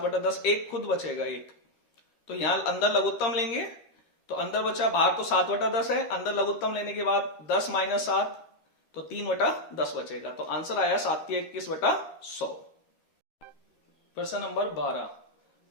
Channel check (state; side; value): late; right; 13 ms